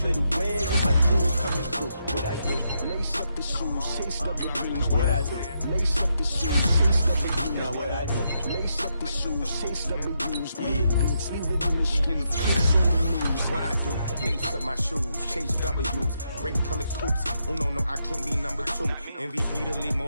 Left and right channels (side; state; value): both; inverted; correlation -0.81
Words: the way with my crew coming through. What I do? Lace up the shoes, chase up the rings. What I do? Lace up the shoes, chase up the rings. Now what I do? Lace up the shoes, chase up the rings. Yeah, beats, leave it in the streets, kiss on the news. What I do? Lace up my shoes, chase W's, great colored coops. Oh no, I can't be number 2. MVP the league